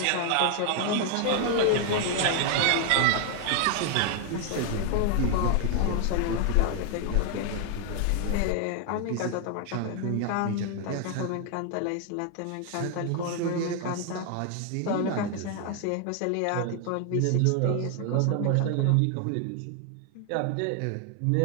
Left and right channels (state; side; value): different; both; correlation 0.00